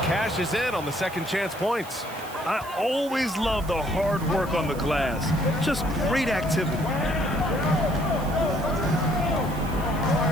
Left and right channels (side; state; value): right; noise; hiss, 18 dB below the sound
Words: cashes in on the second chance points. I always love the hard work on the glass. Just great activity.